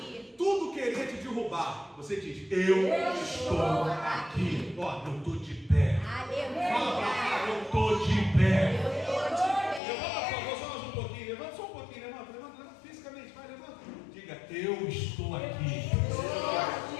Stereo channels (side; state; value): right; drops out; at 9.8 s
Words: Tudo querer te derrubar, você diz: eu estou aqui. Ó, eu estou de pé. Aleluia! Fala pra cá: eu estou de pé. Eu estou de Levanta, por pé. favor, só mais um pouquinho. Levanta só um pouquinho. Levanta fisicamente. Vai, levanta. Diga: eu estou aqui.